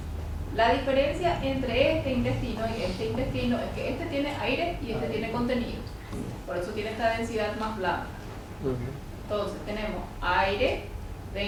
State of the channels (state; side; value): identical; both; correlation 1.00